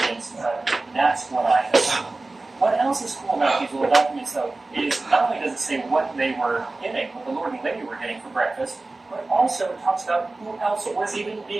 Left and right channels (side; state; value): left; quieter; 3.2 dB